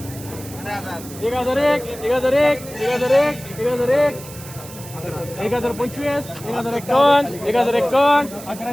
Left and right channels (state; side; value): noise; right; hiss, 16 dB below the sound